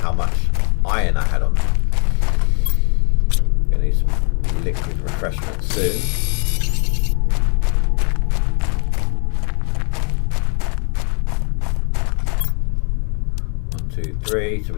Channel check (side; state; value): right; quieter; 38.8 dB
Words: iron I had on me. Gonna need some liquid refreshment soon. One, two, three. So